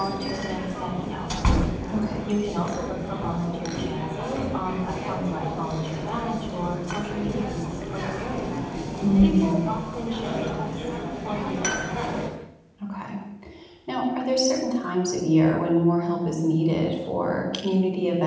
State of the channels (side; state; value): both; identical; correlation 1.00